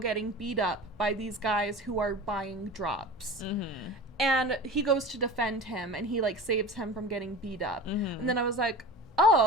getting beat up by these guys who are buying drops. Mm-hmm. And he goes to defend him, and he like saves him from getting beat up. Mm-hmm. And then I was like,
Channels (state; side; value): normal; both; correlation 0.34